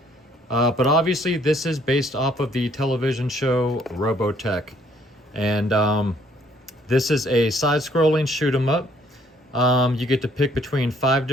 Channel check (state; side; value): normal; both; correlation 0.64